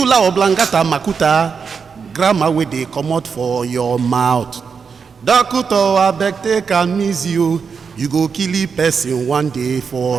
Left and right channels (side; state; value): left; quieter; 5.8 dB